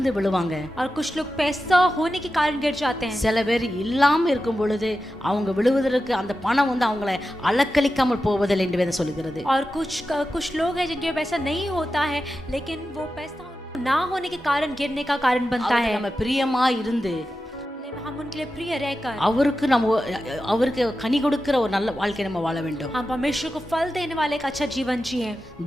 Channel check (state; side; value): normal; both; correlation 0.91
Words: விழுவாங்க, और कुछ लोग पैसा होने के कारण गिर जाते हैं. சில பேர் இல்லாம இருக்கும் பொழுது அவங்க விழுவதற்கு அந்த பணம் அவங்களை அலக்களிக்காமல் போவதில்லை என்று வேதம் சொல்கிறது. और कुछ लोग हैं जिनके पैसा नहीं होता है, लेकिन वो पैसा ना होने के कारण गिरने का कारण बनता है. நம்ம பிரியமா இருந்து हम उनके लिए प्रिय रहकर அவருக்கு கனி கொடுக்கிற ஒரு நல்ல வாழ்க்கை நம்ம வாழ வேண்டும். हम परमेश्वर को फल देने वाले एक अच्छा जीवन जिए.